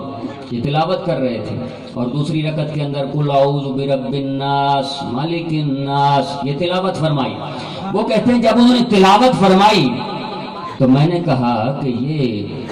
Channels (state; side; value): identical; both; correlation 1.00